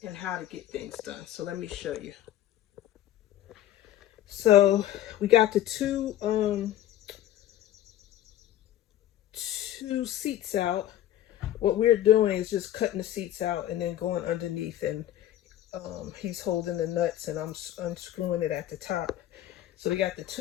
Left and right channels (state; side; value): quieter; right; 12.7 dB